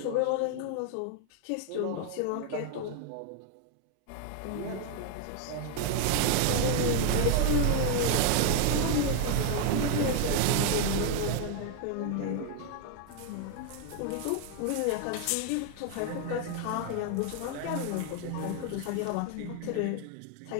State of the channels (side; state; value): both; different; correlation 0.00